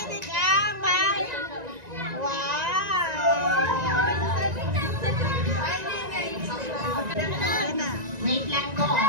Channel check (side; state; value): left; late; 1.9 ms